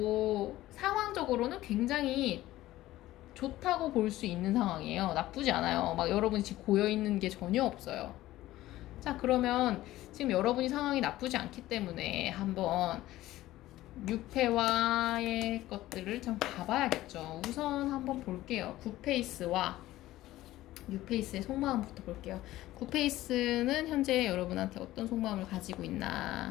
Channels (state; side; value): quieter; right; 15.8 dB